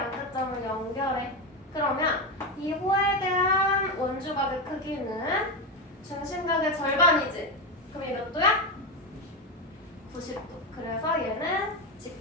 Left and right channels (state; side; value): normal; both; correlation 0.13